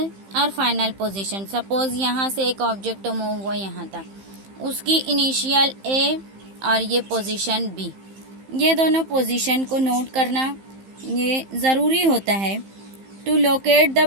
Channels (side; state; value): left; late; 15 ms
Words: और फाइनल पोजीशन, सपोज यहाँ से एक ऑब्जेक्ट मूव हुआ यहाँ तक, उसकी इनिशियल ए और ये पोजीशन बी, ये दोनों पोजीशन को नोट करना ये ज़रूरी होता है टू लोकेट द